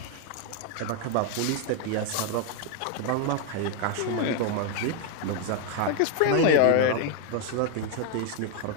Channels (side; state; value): both; different; correlation 0.01